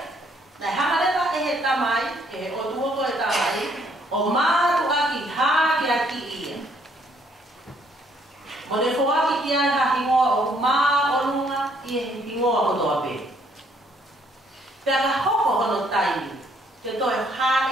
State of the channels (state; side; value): normal; both; correlation 0.67